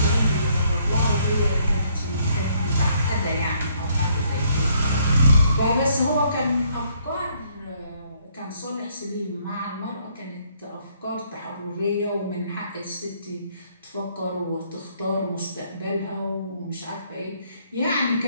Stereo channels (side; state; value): both; inverted; correlation -0.68